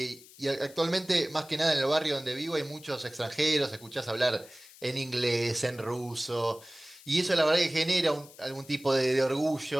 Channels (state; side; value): noise; left; hiss, 21 dB below the sound